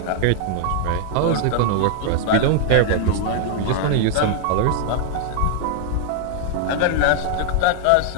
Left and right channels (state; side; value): different; both; correlation -0.01